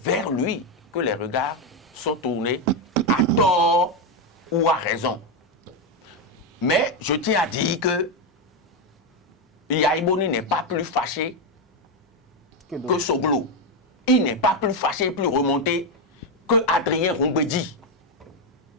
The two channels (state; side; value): normal; both; correlation 0.06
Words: lui que les regards sont tournés à tort ou à raison. Mais je tiens à dire que Yahi Boni n'est pas plus fâché que Soglo. Il n'est pas plus fâché, plus remonté que Adrien Roumbedi.